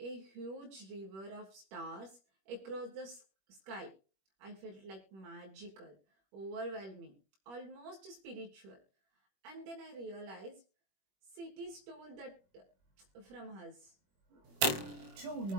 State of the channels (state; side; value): late; left; 21 ms